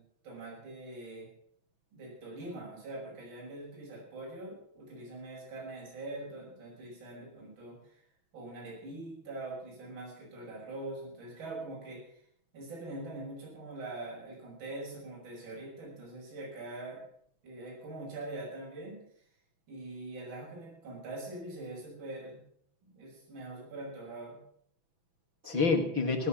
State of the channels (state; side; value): late; left; 6.1 ms